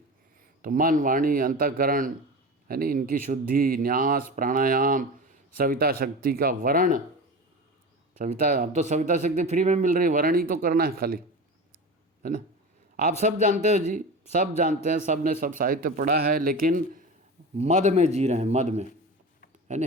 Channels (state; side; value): normal; both; correlation 0.29